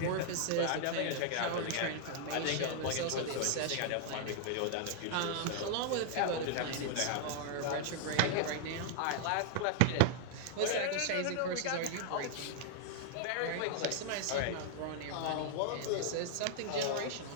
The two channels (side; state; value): both; different; correlation 0.00